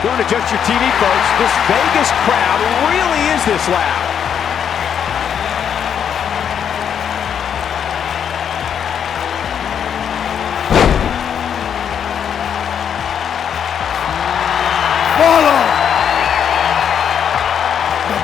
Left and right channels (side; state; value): right; quieter; 8.2 dB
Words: Don't adjust your TV, folks. This Vegas crowd really is this loud. Follow the